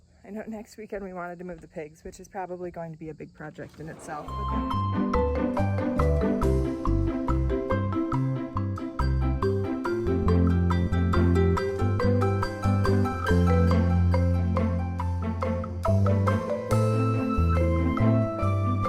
I know next weekend we wanted to move the pigs, which is probably going to be a big project in itself. But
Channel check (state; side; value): identical; both; correlation 1.00